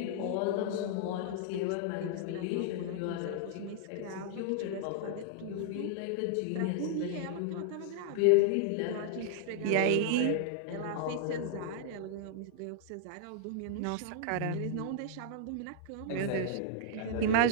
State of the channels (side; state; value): both; different; correlation -0.01